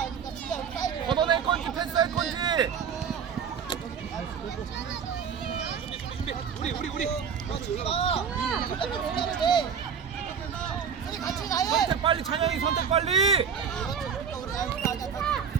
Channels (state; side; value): quieter; left; 7.1 dB